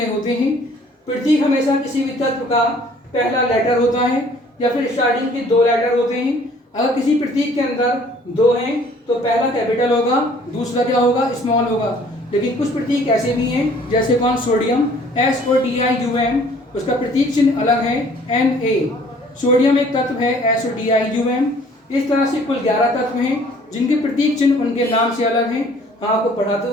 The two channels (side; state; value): both; normal; correlation 0.56